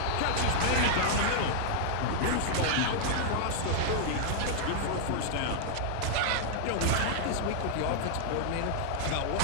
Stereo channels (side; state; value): both; different; correlation -0.01